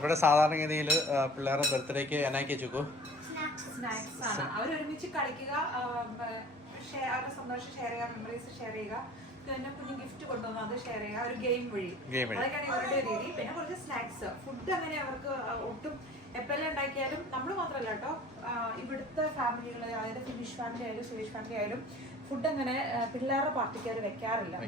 സാധാരണഗതിയിൽ പിള്ളേരുടെ ബർത്ത്ഡേക്ക് എന്നാക്കി വെച്ചു സ്നാക്സ് ആണ്. അവരൊരുമിച്ച് കളിക്കുക, അവരുടെ സന്തോഷം ഷെയർ ചെയ്യുക, മെമ്മറീസ് ഷെയർ ചെയ്യുക, പിന്നെ കുഞ്ഞു ഗിഫ്റ്റ് കൊണ്ടുവന്ന് അത് ഷെയർ ചെയ്യുക, ഒരു ഗെയിം വഴി. അതൊക്കെയാണ് ഇവരുടെ രീതി. പിന്നെ കുറച്ച് സ്നാക്സ്. ഫുഡ് അങ്ങനെ അവർക്ക് ഒട്ടും എപ്പോഴെല്ലാം ഉണ്ടാക്കിയാലും നമ്മൾ മാത്രമല്ല കേട്ടോ, ഇവിടുത്തെ ഫാമിലികൾ, അതായത് ഫിനിഷ് ഫാമിലി ആയാലും സ്വീഡിഷ് ഫാമിലി ആയാലും ഫുഡ് അങ്ങനെ പിള്ളേരുടെ പാർട്ടിക്ക് അവർ വെക്കാറില്ല.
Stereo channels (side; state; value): both; normal; correlation 0.45